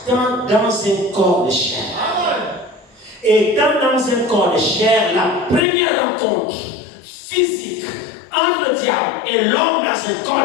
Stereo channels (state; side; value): drops out; right; at 5.7 s